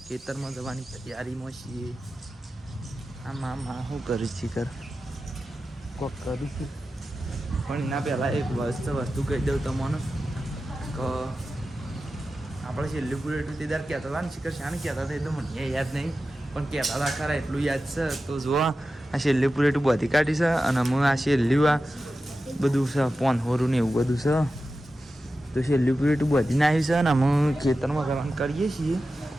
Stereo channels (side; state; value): both; normal; correlation 0.93